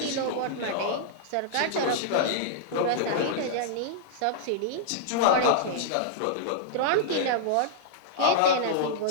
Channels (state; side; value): different; both; correlation -0.01